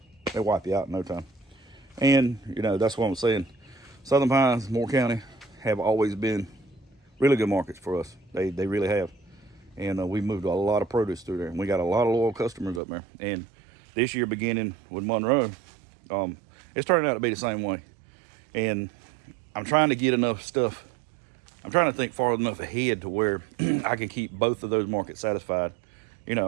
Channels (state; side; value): drops out; left; at 12.8 s